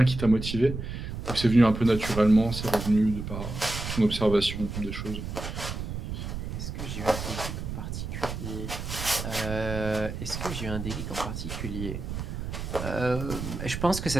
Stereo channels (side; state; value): right; noise; rumble, 6 dB below the sound